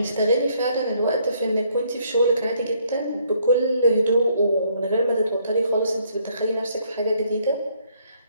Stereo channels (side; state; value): both; inverted; correlation -0.68